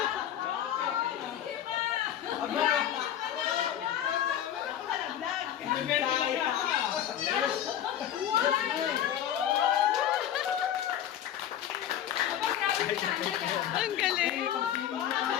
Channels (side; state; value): right; quieter; 10.6 dB